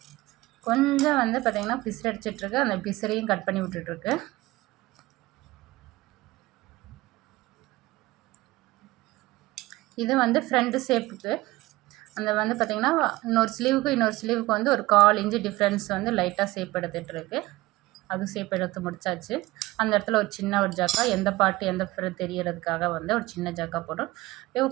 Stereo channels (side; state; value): left; quieter; 19.2 dB